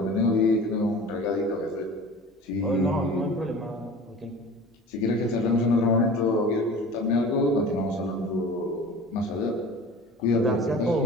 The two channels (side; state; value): both; normal; correlation 0.39